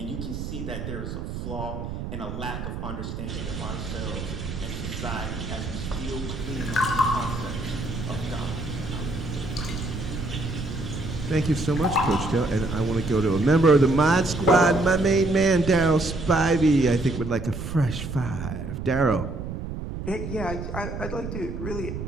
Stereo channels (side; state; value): right; noise; rumble, 6 dB below the sound